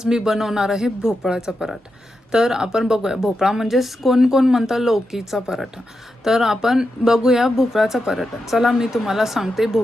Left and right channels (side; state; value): both; normal; correlation 0.87